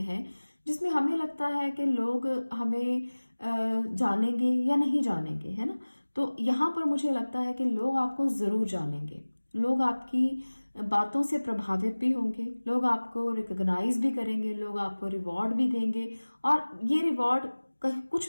हैं जिसमें हमें लगता है कि लोग हमें जानेंगे या नहीं जानेंगे, है ना। तो यहाँ पर मुझे लगता है कि लोग आपको जरूर जानेंगे, लोग आपकी बातों से प्रभावित भी होंगे, लोग आपको रिकॉग्नाइज भी करेंगे, लोग आपको रिवॉर्ड भी देंगे। और ये रिवॉर्ड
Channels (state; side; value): inverted; both; correlation -1.00